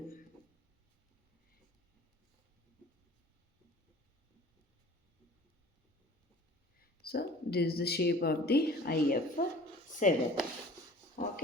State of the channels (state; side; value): normal; both; correlation 0.45